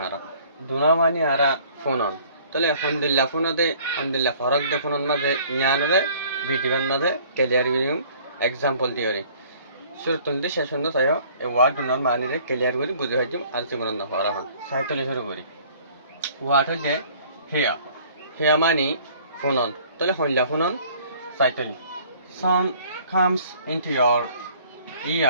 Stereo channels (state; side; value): inverted; both; correlation -0.55